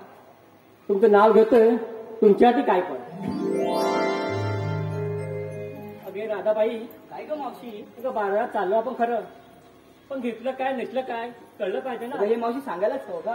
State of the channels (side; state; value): both; identical; correlation 1.00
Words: तुमचं नाव घेतोय, तुमच्यासाठी काय पण. अगे राधाबाई, काय ग मावशी? अगं बाजारात चाललो आपण खरं, पण घेतलं काय नेसलं काय कळलं पाहिजे ना. हे मावशी सांगायलाच हवं